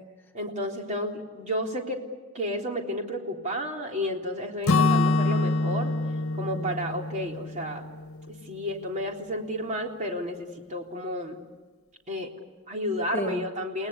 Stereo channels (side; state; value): both; normal; correlation 0.30